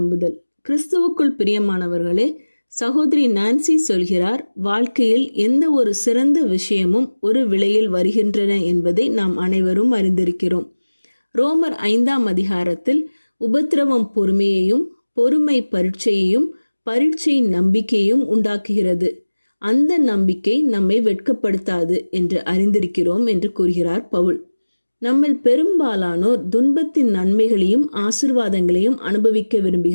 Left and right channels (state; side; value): inverted; both; correlation -1.00